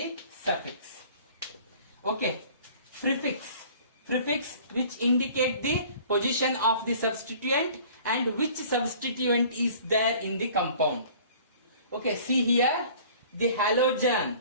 Okay, prefix which indicate the position of the substituent and which substituent is there in the compound. Okay, see here, the halogen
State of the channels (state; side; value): inverted; both; correlation -0.49